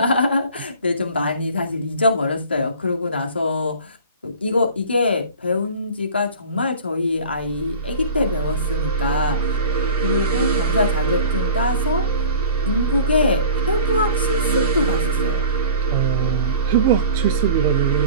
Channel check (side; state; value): both; inverted; correlation -0.40